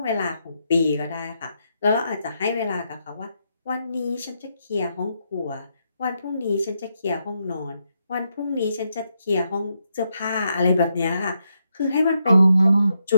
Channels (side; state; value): both; inverted; correlation -0.81